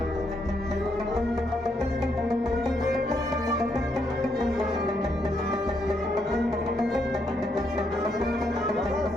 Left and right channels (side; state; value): both; normal; correlation 0.76